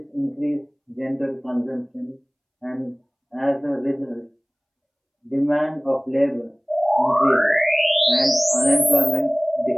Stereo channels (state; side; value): identical; both; correlation 1.00